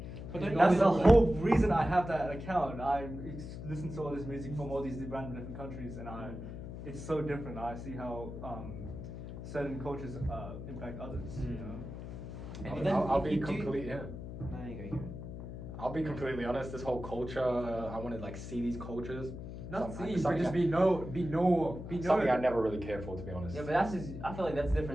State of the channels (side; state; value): left; noise; hum, 9 dB below the sound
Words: But that's the whole reason I have that account. I listen to all this music from all these random different countries, and it's so different. I see how certain cultures impact others. And then I'll if be you do- completely No, you go. I'll be completely honest. This whole culture, I want to like see these cultures. not Something- see, but just something be I never really cared for, to be honest. Yeah, but that's just. I feel like that's